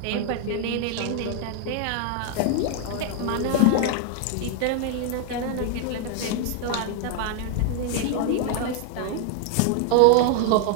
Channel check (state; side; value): different; both; correlation 0.00